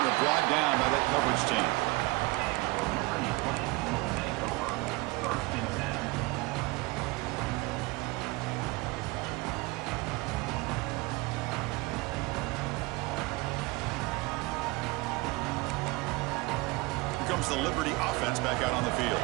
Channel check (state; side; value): quieter; left; 23.4 dB